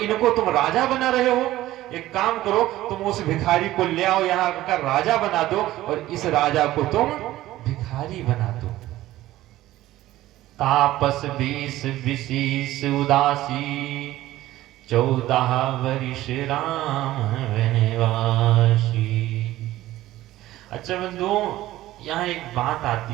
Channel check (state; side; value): quieter; left; 15.4 dB